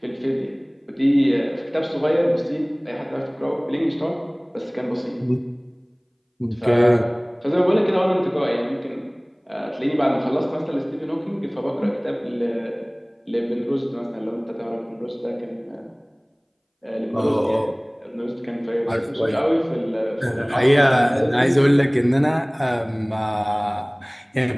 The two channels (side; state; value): both; identical; correlation 1.00